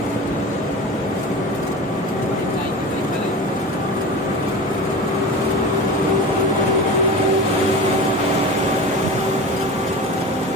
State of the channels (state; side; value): normal; both; correlation 0.32